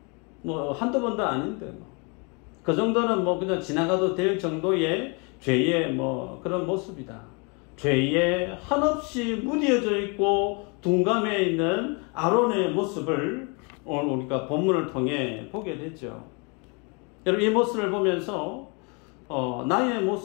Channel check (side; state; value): right; quieter; 32.8 dB